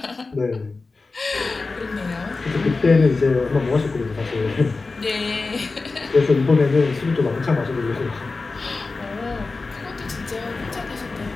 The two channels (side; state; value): right; quieter; 3.8 dB